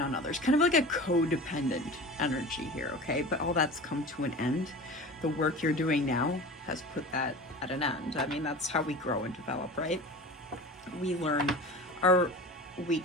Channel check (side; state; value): both; normal; correlation 0.35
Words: others, kind of like a codependent energy here, okay? But all that's come to an end. The work you're doing now has put that at an end. I mean, that's how we grow and develop, right? We learn our